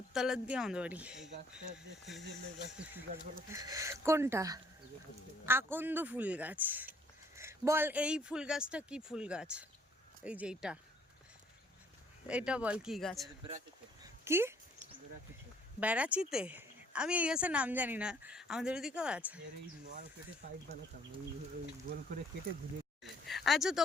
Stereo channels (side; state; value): both; normal; correlation 0.62